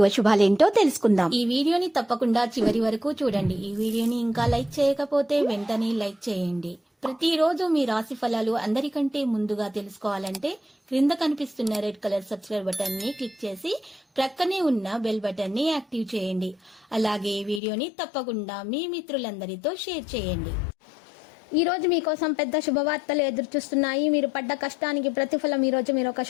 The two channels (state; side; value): drops out; right; at 17.6 s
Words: అశుభాలేంటో తెలుసుకుందాం. ఈ వీడియోని తప్పకుండా చివరి వరకు చూడండి. ఈ వీడియోని ఇంకా లైక్ చేయకపోతే వెంటనే లైక్ చేయండి. ప్రతిరోజు మీ రాశి ఫలాలు అందరికంటే ముందుగా తెలుసుకోవాలంటే క్రింద కనిపిస్తున్న రెడ్ కలర్ సబ్స్క్రైబ్ బటన్ ని క్లిక్ చేసి ప్రక్కనే ఉన్న బెల్ బటన్ ని యాక్టివ్ చేయండి. అలాగే ఈ వీడియోని తప్పకుండా మీ మిత్రులందరితో షేర్ చేయండి. ఈ రోజు మీకోసం పెద్ద శుభవార్తలు ఎదురు చూస్తున్నాయి. మీరు పడ్డ కష్టానికి ప్రతిఫలం ఈ రోజు మీరు ఒక